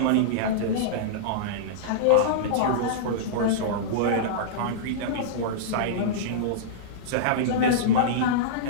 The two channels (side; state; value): both; different; correlation -0.03